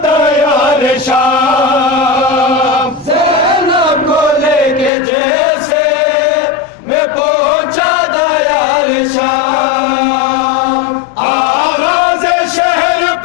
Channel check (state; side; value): drops out; right; at 4.9 s